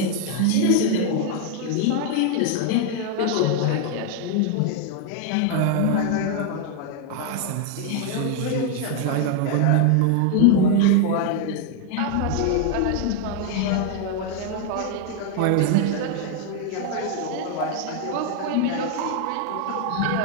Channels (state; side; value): different; both; correlation 0.00